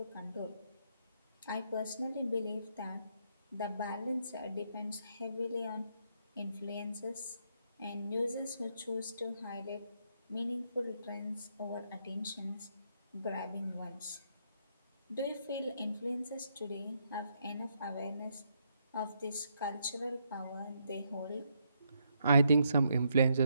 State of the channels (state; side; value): inverted; both; correlation -0.76